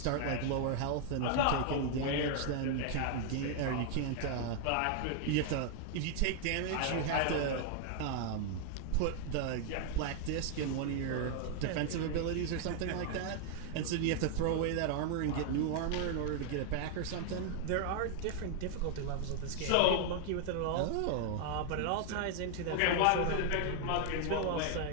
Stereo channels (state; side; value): different; both; correlation 0.00